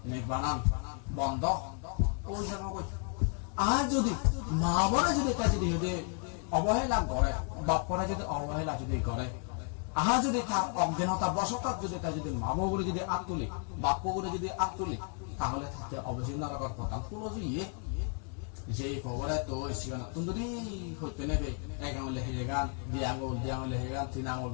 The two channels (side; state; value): right; quieter; 39.7 dB